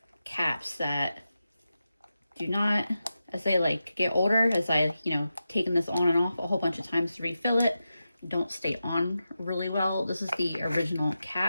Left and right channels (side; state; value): both; inverted; correlation -0.91